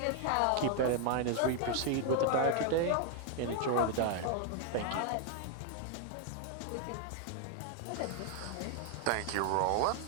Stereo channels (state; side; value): different; both; correlation 0.00